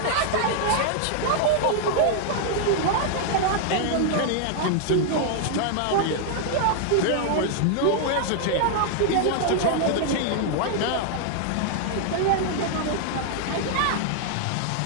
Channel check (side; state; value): both; different; correlation -0.01